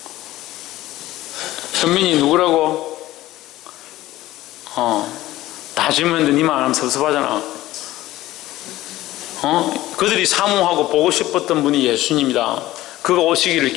현민이 누구라고? 다 질문했는데 니만 안 하면 섭섭하잖아. 그들이 사모하고 보고 싶었던 분이 예수님이다. 그가 오시기를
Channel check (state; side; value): quieter; right; 16.1 dB